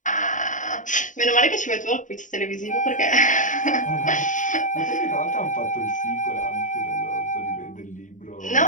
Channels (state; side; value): late; right; 0.37 ms